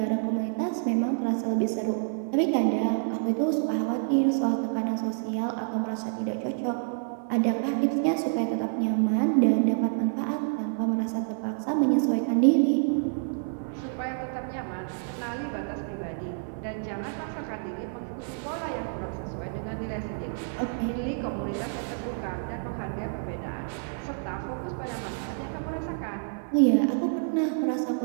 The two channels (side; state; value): left; silent; 59 dB below the other